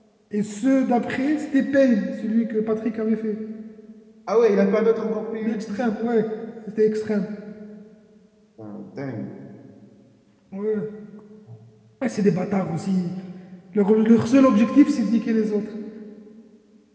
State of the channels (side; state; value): both; identical; correlation 1.00